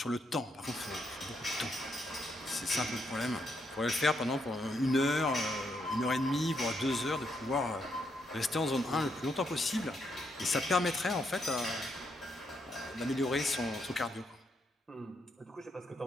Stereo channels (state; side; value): normal; both; correlation 0.78